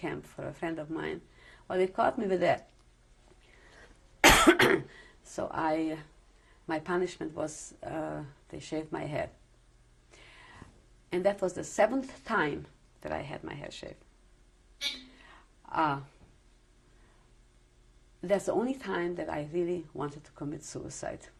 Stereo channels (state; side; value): identical; both; correlation 1.00